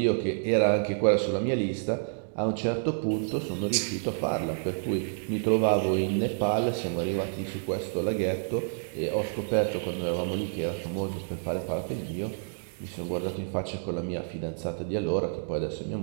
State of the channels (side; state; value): left; silent; digital silence